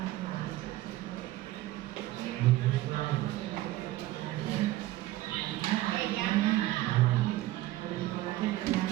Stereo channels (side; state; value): left; quieter; 16.2 dB